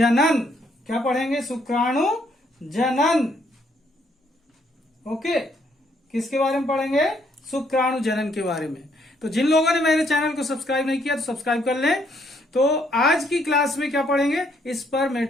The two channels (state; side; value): normal; both; correlation 0.70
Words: क्या पढ़ेंगे? शुक्राणु जनन। ओके, किसके बारे में पढ़ेंगे? शुक्राणु जनन के बारे में। तो जिन लोगों ने मेरे चैनल को सब्सक्राइब नहीं किया तो सब्सक्राइब कर लें। तो आज की क्लास में क्या पढ़ेंगे?